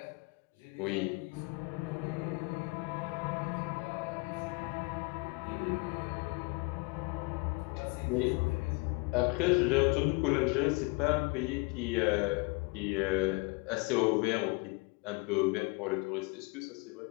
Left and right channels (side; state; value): right; quieter; 28.4 dB